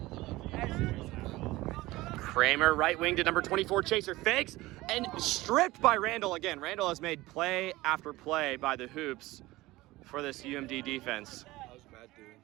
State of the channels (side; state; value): left; quieter; 19.0 dB